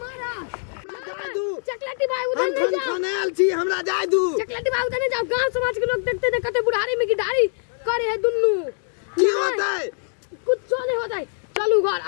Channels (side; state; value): right; silent; digital silence